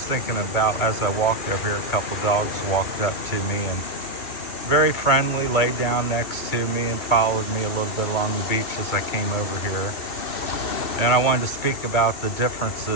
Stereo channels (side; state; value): right; late; 2.2 ms